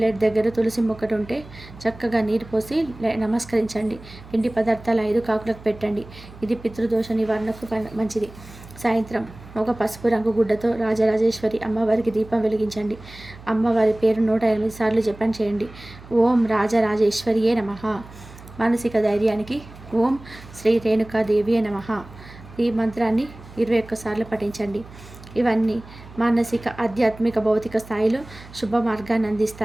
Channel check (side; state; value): right; noise; hum, 19 dB below the sound